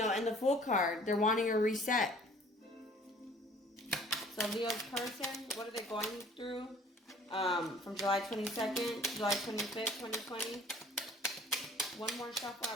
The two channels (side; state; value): both; normal; correlation 0.53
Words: and the Fool card, they're wanting a reset. So Leo's person, what are they going through? From July 22nd to July 25th, 2020. One more shuffle